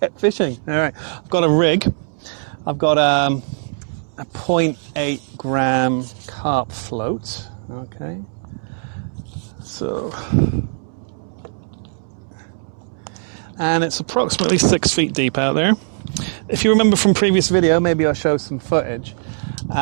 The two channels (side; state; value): left; silent; 65 dB below the other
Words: get fishing. All right, I've got a rig. I've got a 0.8 gram carp float, okay. So, and it's approximately 6 feet deep out there. If you remember from previous video, maybe I'll show some footage.